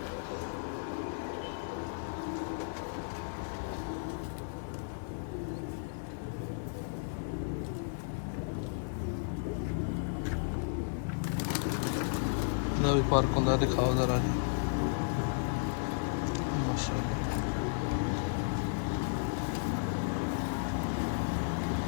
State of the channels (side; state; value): right; silent; digital silence